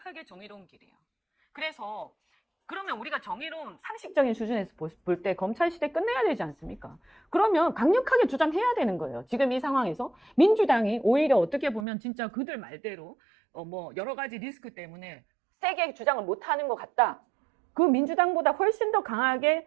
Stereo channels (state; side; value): drops out; left; at 11.9 s